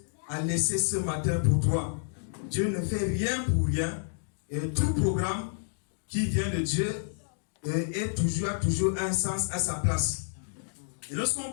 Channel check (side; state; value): right; silent; digital silence